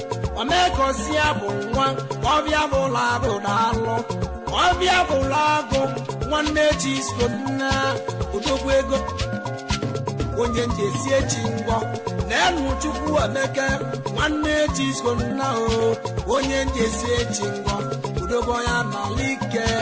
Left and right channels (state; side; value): identical; both; correlation 1.00